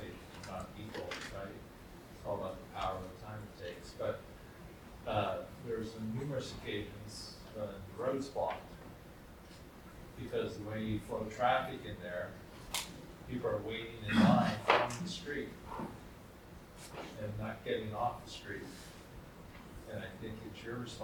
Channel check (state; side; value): identical; both; correlation 1.00